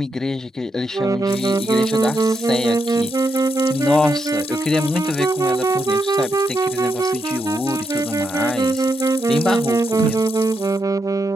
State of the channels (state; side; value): normal; both; correlation 0.82